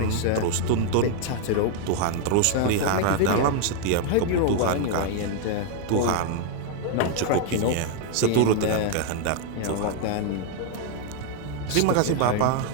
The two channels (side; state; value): both; different; correlation 0.00